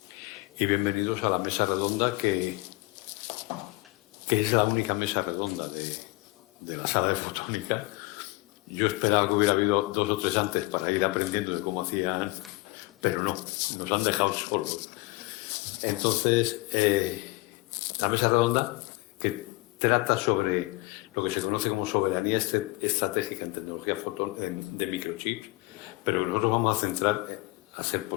y bienvenidos a la mesa redonda que es la única mesa redonda de la sala de fotónica. Yo esperaba que hubiera habido 2 o 3 antes para ir aprendiendo de cómo hacían, pero no, nos han dejado solos. Entonces, la mesa redonda que trata sobre lo que se conoce como soberanía estratégica en tecnología de microchips, pero nosotros vamos a centrar, a ser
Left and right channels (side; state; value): right; quieter; 22.4 dB